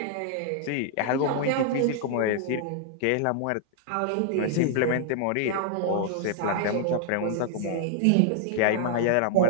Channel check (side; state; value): both; different; correlation -0.01